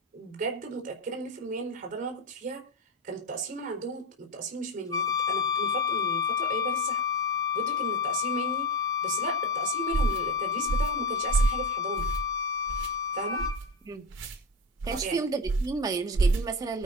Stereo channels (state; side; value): normal; both; correlation 0.17